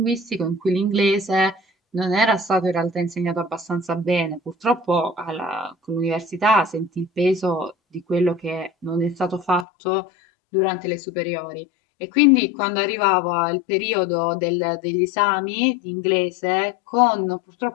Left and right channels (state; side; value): drops out; right; at 9.7 s